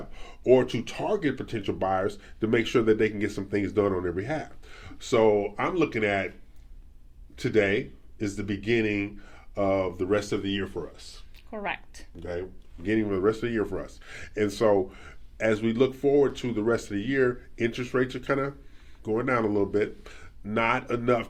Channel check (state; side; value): identical; both; correlation 1.00